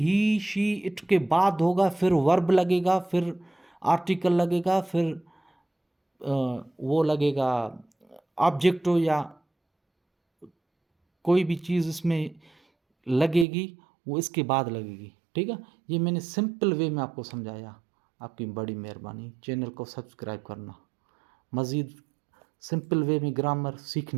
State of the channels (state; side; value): drops out; left; at 13.5 s